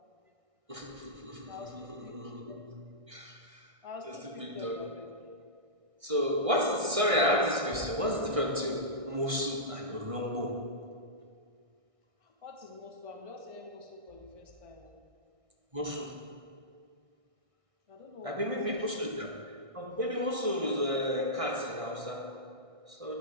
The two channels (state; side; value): late; left; 1.6 ms